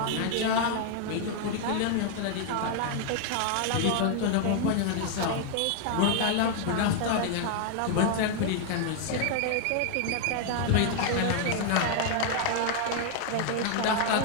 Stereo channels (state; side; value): different; both; correlation 0.00